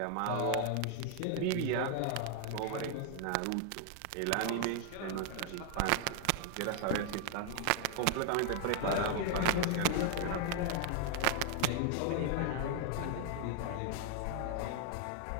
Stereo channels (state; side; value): different; both; correlation 0.00